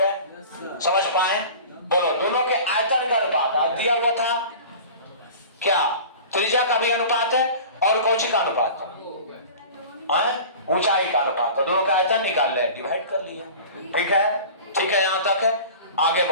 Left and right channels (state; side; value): inverted; both; correlation -0.39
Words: समझ पाए? बोलो, दोनों के आयतन का अनुपात दिया हुआ था, क्या त्रिज्या का भी अनुपात है और कौची का अनुपात? ऊंचाई का अनुपात, तो दोनों का आयतन निकाल ले, डिवाइड कर लिया। ठीक है, ठीक है, यहां तक है। आगे